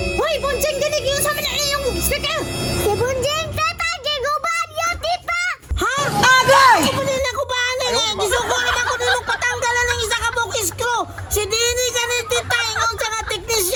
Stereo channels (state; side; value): identical; both; correlation 1.00